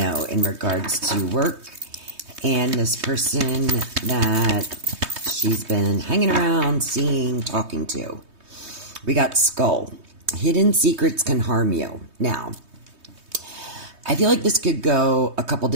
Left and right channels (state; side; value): late; left; 3.2 ms